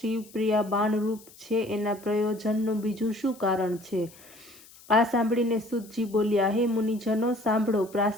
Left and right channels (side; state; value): left; noise; hiss, 23 dB below the sound